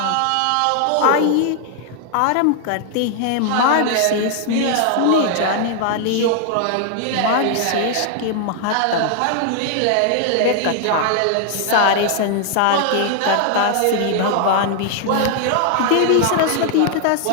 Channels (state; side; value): different; both; correlation 0.00